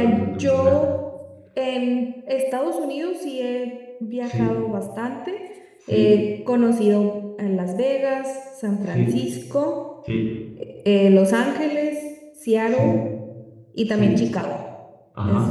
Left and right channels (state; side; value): identical; both; correlation 1.00